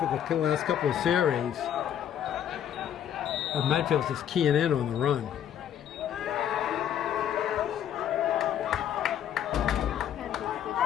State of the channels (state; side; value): quieter; right; 9.9 dB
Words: the last couple of series. And Medfield's just keying in on the run.